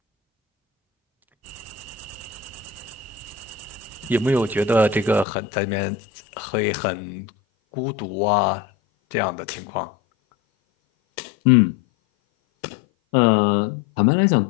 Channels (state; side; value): drops out; right; at 5.2 s